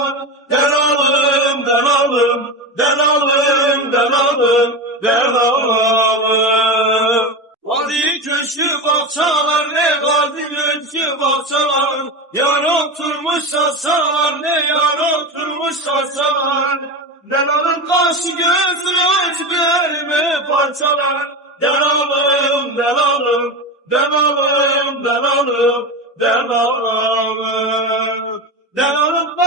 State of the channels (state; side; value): normal; both; correlation 0.21